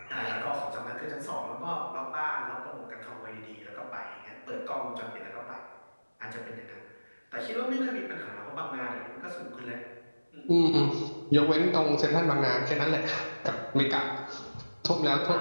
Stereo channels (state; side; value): inverted; both; correlation -1.00